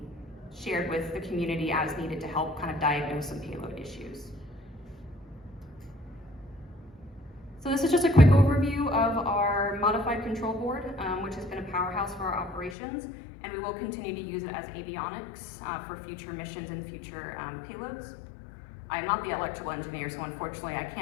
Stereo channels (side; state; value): right; drops out; at 12.8 s